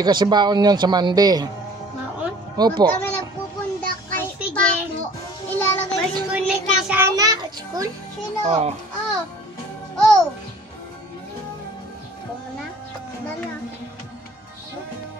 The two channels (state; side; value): normal; both; correlation 0.50